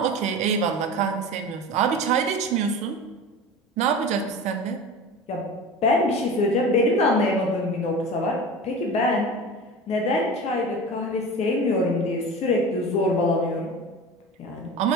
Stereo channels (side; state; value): both; normal; correlation 0.32